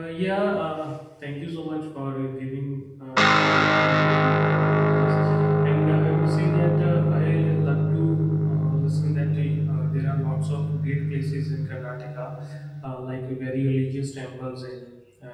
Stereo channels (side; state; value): both; identical; correlation 1.00